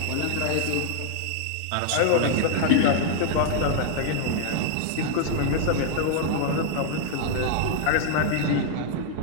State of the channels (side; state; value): both; different; correlation -0.01